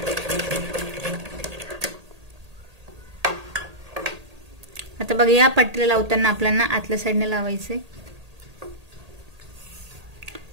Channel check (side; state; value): left; late; 1.8 ms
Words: आता बघा या पट्टीला लावताना आपल्याला आतल्या साईडने लावायचे,